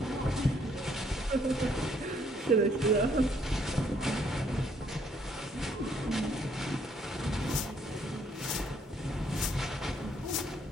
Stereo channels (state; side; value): normal; both; correlation 0.67